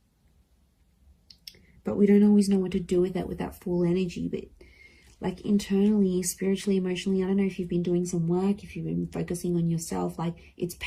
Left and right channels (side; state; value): both; identical; correlation 1.00